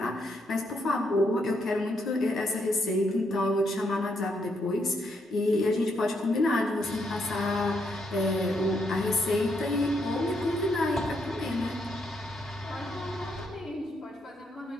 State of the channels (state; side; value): normal; both; correlation 0.77